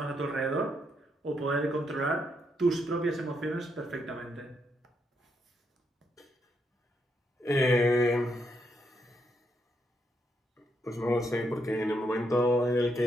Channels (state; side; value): normal; both; correlation 0.78